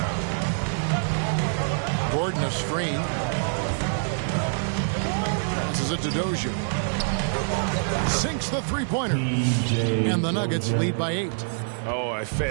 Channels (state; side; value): silent; left; digital silence